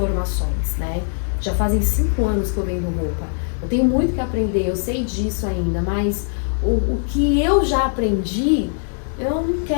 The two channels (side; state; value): right; silent; digital silence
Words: né? Já fazem 5 anos que eu vendo roupa. Eu tenho muito que aprender, eu sei disso ainda, mas o que eu já aprendi, eu não